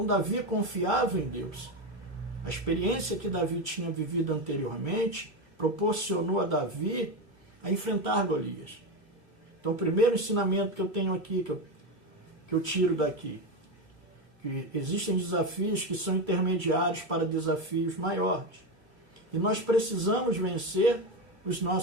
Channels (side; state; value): left; late; 2.8 ms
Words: Davi confiava em Deus. A experiência que Davi tinha vivido anteriormente proporcionou a Davi a enfrentar Golias. Então, o primeiro ensinamento que eu tenho aqui, que eu tiro daqui, que existem desafios que são intermediários para desafios maiores. E nós precisamos vencer os